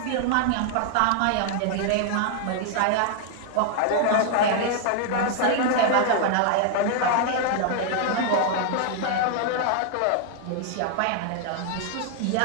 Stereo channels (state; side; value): different; both; correlation 0.00